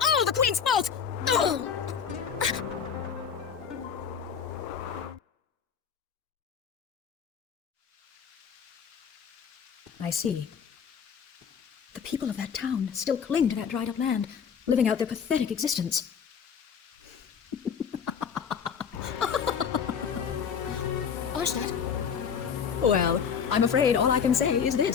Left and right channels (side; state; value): right; quieter; 7.1 dB